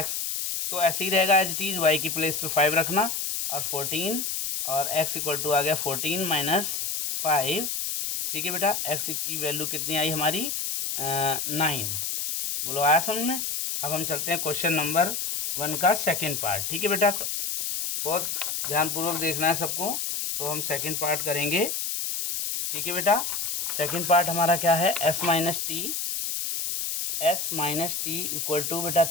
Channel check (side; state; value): left; noise; hiss, 2 dB below the sound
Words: तो ऐसे ही रहेगा एज इट इज, y की प्लेस पे 5 रखना और 14 और x इक्वल टू आ गया 14 माइनस 5। ठीक है बेटा, x की वैल्यू कितनी आई हमारी 9। बोलो आया समझ में? अब हम चलते हैं क्वेश्चन नंबर 1 का सेकेंड पार्ट। ठीक है बेटा, बहुत ध्यानपूर्वक देखना है सबको। तो हम सेकंड पार्ट करेंगे। ठीक है बेटा, सेकंड पार्ट हमारा क्या है, s minus t equal to बेटा